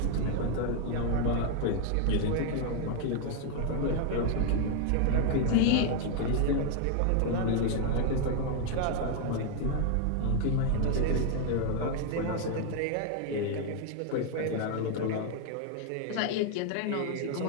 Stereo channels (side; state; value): both; different; correlation 0.00